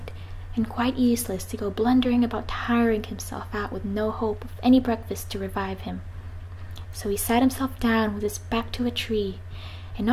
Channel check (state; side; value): identical; both; correlation 1.00